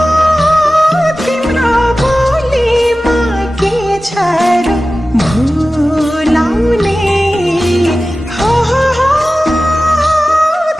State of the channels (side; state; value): both; normal; correlation 0.95